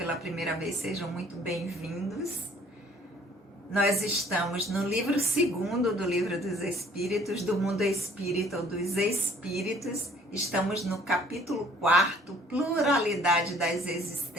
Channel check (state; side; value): normal; both; correlation 0.56